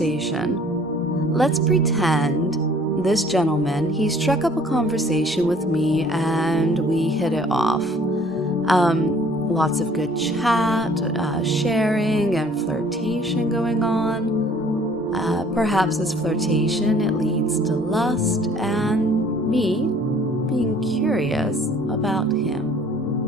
Let's pretend this gentleman, he struck up a conversation with me and we hit it off. Lots of good chat, sharing, and flirtation going on. Perhaps this flirtation, it leads to lust and me being curious about him.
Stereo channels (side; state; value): both; normal; correlation 0.55